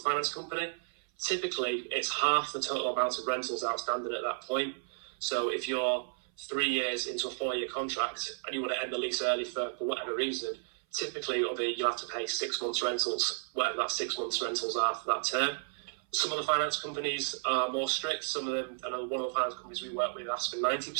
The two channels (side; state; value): left; silent; 56 dB below the other